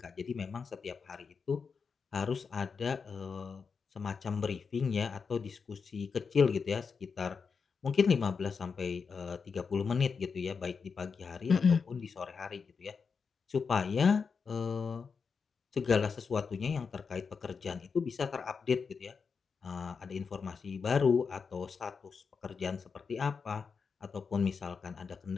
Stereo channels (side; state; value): right; quieter; 5.5 dB